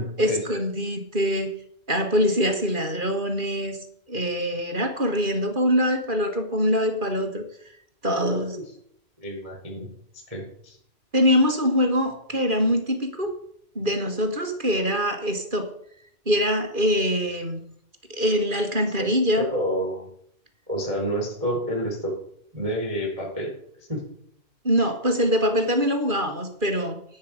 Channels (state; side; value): late; left; 2.4 ms